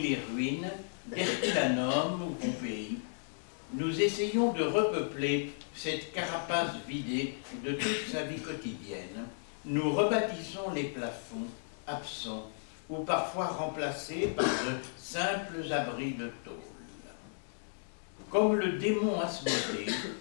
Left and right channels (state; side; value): silent; right; digital silence